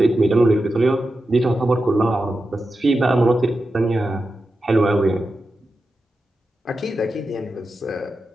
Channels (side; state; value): both; normal; correlation 0.91